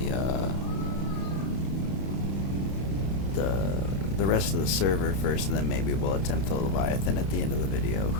the rest of the server first, and then maybe we'll attempt the Leviathan at the end of the video.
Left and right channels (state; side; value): late; right; 31 ms